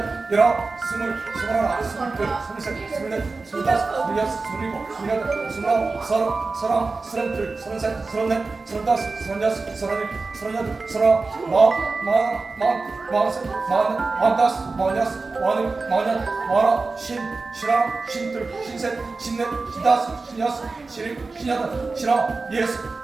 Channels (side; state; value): left; quieter; 3.8 dB